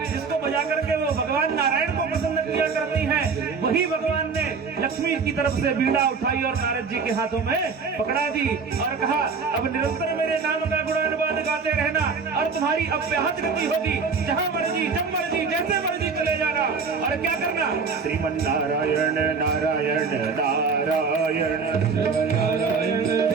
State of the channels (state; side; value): quieter; left; 5.2 dB